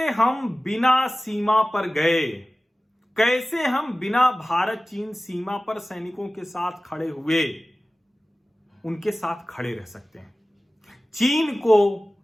हम बिना सीमा पर गए, कैसे हम बिना भारत चीन सीमा पर सैनिकों के साथ खड़े हुए उनके साथ खड़े रह सकते हैं, चीन को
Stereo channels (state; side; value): normal; both; correlation 0.96